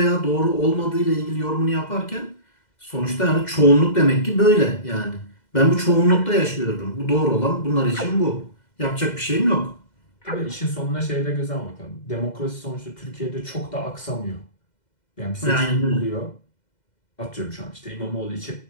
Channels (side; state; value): right; late; 2.1 ms